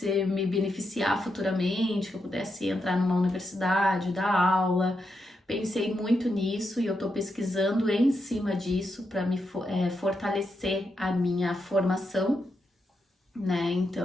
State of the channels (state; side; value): normal; both; correlation 0.84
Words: me beneficiar futuramente, que eu pudesse entrar numa universidade, dar aula. Pensei muito nisso e eu estou pesquisando em cima disso para me fortalecer a minha formação, né?